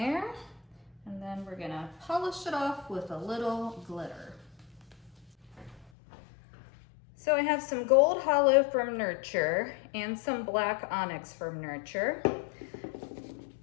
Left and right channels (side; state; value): right; drops out; at 5.9 s